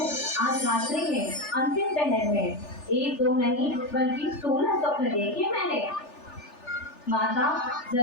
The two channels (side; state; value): right; late; 3.4 ms